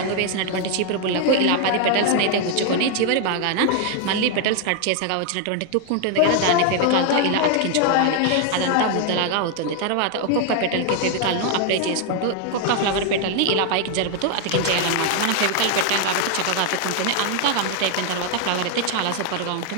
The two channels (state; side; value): different; both; correlation 0.00